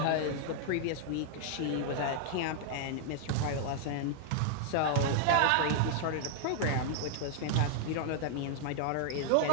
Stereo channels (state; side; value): different; both; correlation 0.00